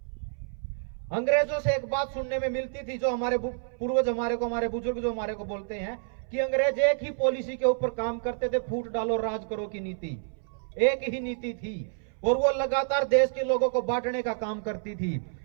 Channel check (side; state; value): left; silent; 59 dB below the other